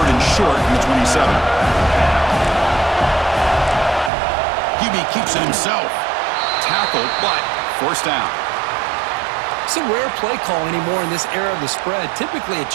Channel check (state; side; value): drops out; left; at 4.1 s